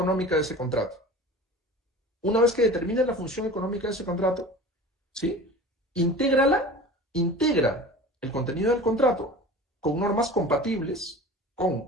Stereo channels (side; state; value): both; normal; correlation 0.38